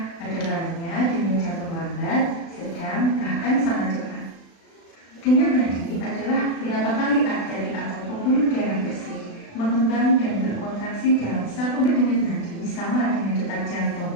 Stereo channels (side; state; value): right; late; 36 ms